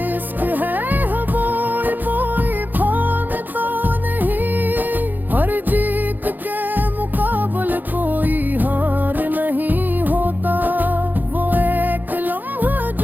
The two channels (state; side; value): late; left; 0.086 ms